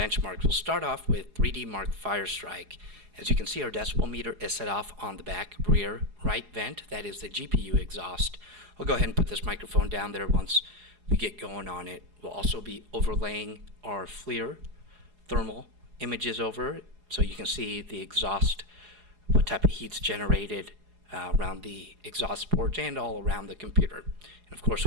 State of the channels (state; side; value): late; left; 4.8 ms